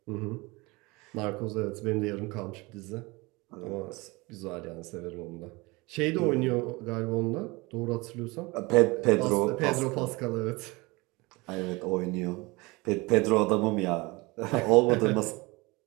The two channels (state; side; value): quieter; left; 24.2 dB